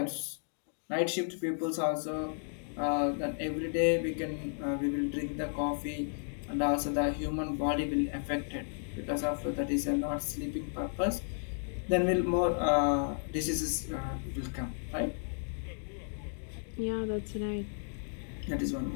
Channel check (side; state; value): right; silent; digital silence